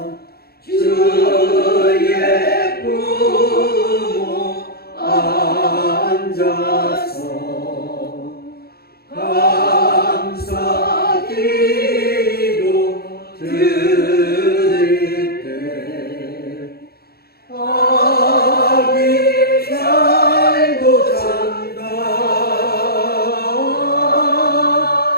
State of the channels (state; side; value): late; right; 0.45 ms